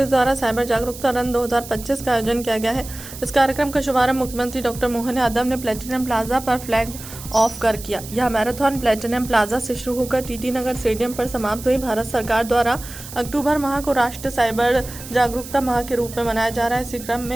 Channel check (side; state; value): right; noise; hiss, 14 dB below the sound